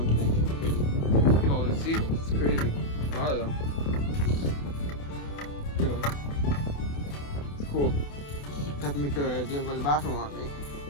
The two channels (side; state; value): right; late; 28 ms